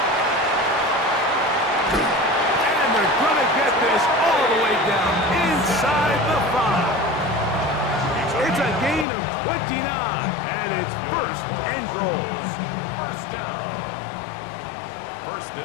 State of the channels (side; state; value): right; drops out; at 9.1 s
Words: And they're going to get this all the way down inside the 5. It's a gain of 29, and it's first and goal. First down. First